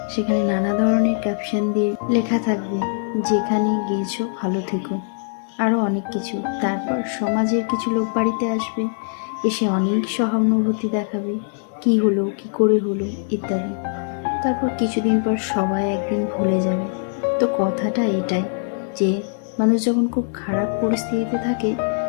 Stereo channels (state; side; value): silent; right; 63 dB below the other